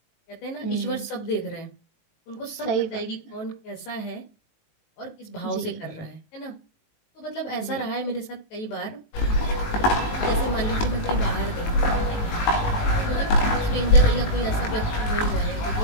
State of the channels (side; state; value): right; late; 19 ms